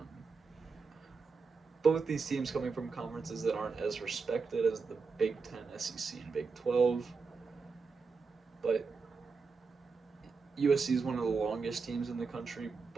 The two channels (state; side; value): quieter; left; 4.8 dB